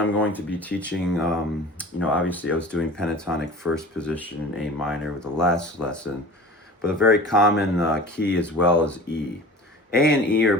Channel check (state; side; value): normal; both; correlation 0.39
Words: going to be teaching, obviously I was doing pentatonic first position in A minor with the last lesson, but a very common key as well is E. A and E are